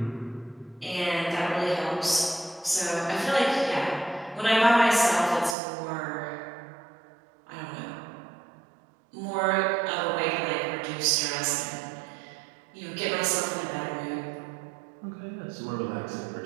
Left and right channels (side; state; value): left; drops out; at 5.6 s